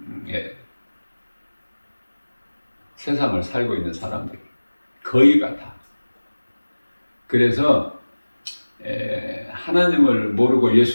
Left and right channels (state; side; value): inverted; both; correlation -1.00